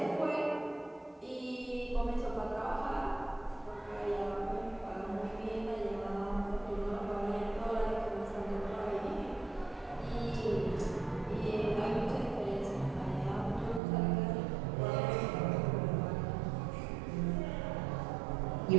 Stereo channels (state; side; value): drops out; left; at 13.8 s